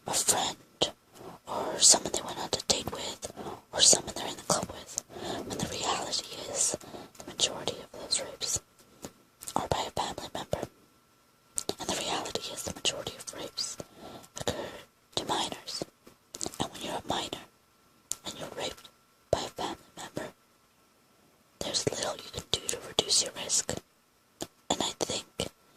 a friend, or someone they went on a date with, or someone they're in the club with, when the reality is the majority of those rapes are by a family member. And the reality is the majority of rapes occur to minors. And when you're a minor and you're raped by a family member, there's little you can do to reduce your risk. And I think that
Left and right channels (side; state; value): both; identical; correlation 1.00